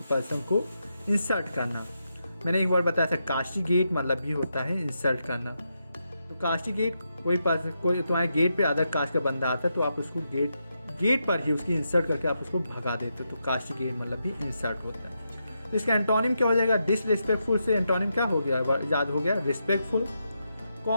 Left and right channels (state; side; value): inverted; both; correlation -0.84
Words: पर्सन को इंसल्ट करना। मैंने एक बार बताया था, कास्टिगेट मतलब भी होता है इंसल्ट करना। तो कास्टिगेट, कोई पर्सन, कोई तुम्हारे गेट पे अदर कास्ट का बंदा आता है तो आप उसको गेट पर ही उसकी इंसल्ट करके आप उसको भगा देते हो, तो कास्टिगेट मतलब भी इंसल्ट होता है। तो इसका एंटोनिम क्या हो जाएगा, डिसरिस्पेक्टफुल से एंटोनिम क्या हो गया, याद हो गया, रिस्पेक्टफुल।